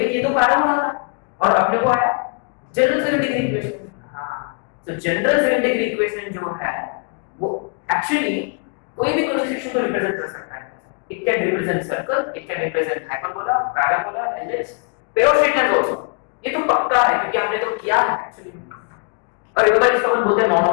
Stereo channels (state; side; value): quieter; right; 37.6 dB